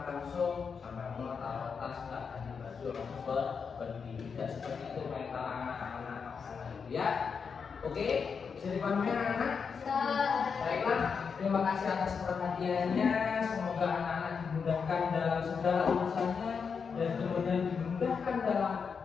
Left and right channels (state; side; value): quieter; right; 5.9 dB